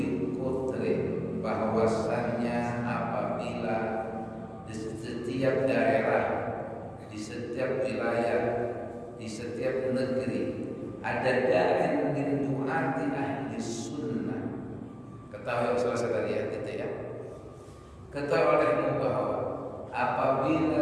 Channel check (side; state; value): both; identical; correlation 1.00